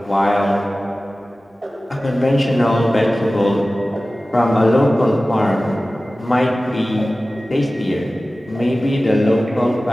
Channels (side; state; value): both; normal; correlation 0.96